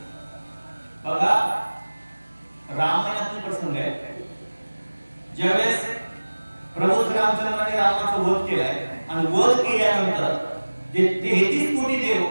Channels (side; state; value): both; inverted; correlation -1.00